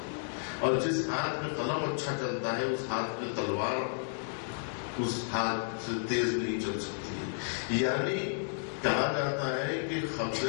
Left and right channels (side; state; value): right; silent; digital silence